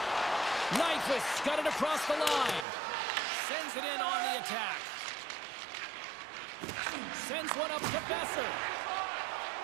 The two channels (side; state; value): left; drops out; at 2.7 s